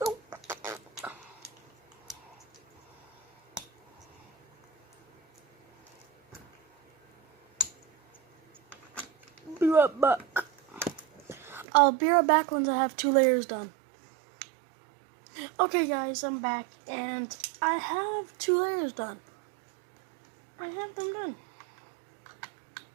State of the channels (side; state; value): left; drops out; at 11.7 s